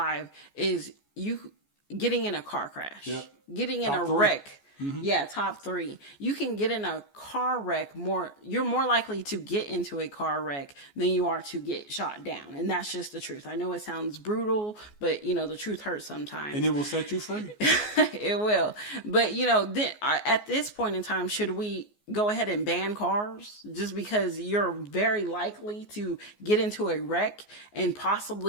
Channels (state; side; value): late; right; 14 ms